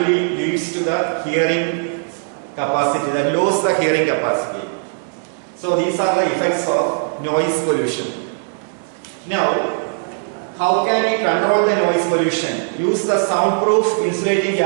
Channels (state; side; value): silent; left; digital silence